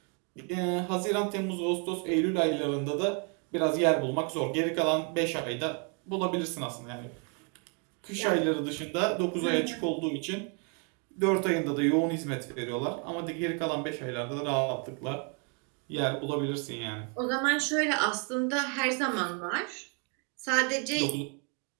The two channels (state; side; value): quieter; left; 37.3 dB